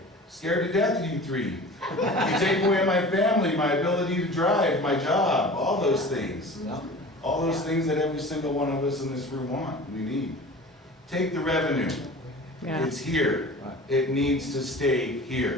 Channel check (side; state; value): both; normal; correlation 0.39